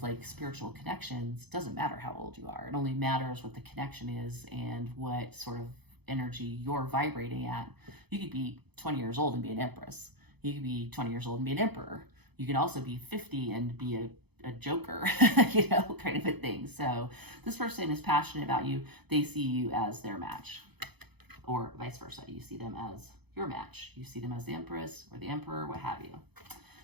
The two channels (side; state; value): left; late; 0.98 ms